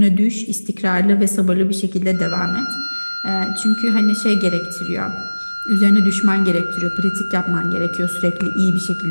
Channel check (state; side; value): inverted; both; correlation -1.00